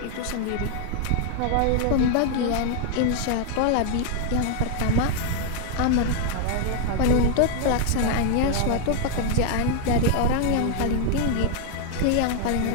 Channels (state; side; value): different; both; correlation 0.00